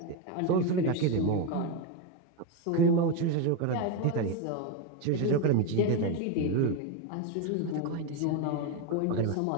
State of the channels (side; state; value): both; different; correlation 0.03